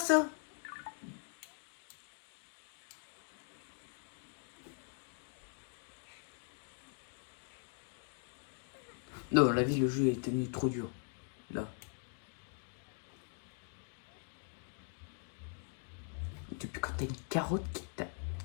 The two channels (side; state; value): right; silent; 50 dB below the other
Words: Non, la vie, le jeu est devenu trop dur. Là. Depuis quand t'as une carotte